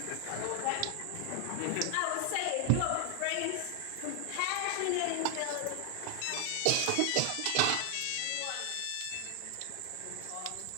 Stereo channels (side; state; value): both; different; correlation 0.00